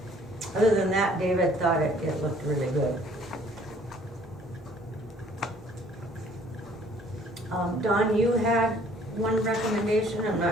Other than that, David thought it looked really good. Don, you had one recommendation, I'm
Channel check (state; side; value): normal; both; correlation 0.58